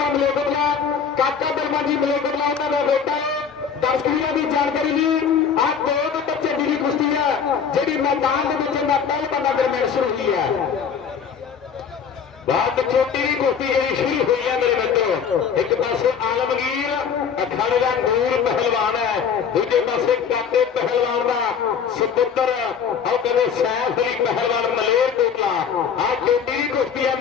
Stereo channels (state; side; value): quieter; right; 6.9 dB